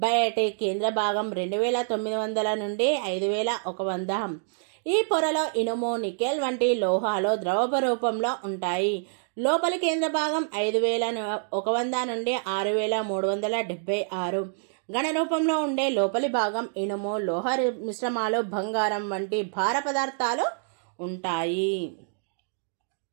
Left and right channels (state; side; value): silent; left; digital silence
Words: బయటి కేంద్ర భాగం 2900 నుండి 5100. ఈ పొరలో ఇనుము, నికెల్ వంటి లోహాలు ద్రవ రూపంలో ఉంటాయి. లోపలి కేంద్ర భాగం 5100 నుండి 6376. ఘన రూపంలో ఉండే లోపలి భాగం ఇనుము, లోహ మిశ్రమాలు, బంగారం వంటి భార పదార్థాలు ఉంటాయి.